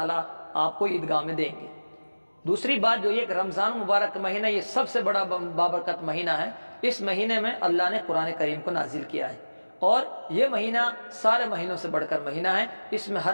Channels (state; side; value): inverted; both; correlation -1.00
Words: آپ کو عیدگاہ میں دیں گے۔ دوسری بات جو یہ کہ رمضان مبارک کا مہینہ یہ سب سے بڑا بابرکت مہینہ ہے۔ اس مہینے میں اللہ نے قرآن کریم کو نازل کیا ہے، اور یہ مہینہ سارے مہینوں سے بڑھ کر مہینہ ہے۔ اس میں ہر